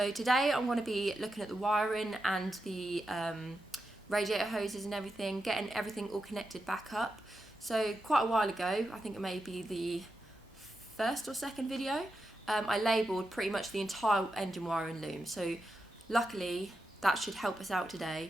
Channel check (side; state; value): both; normal; correlation 0.88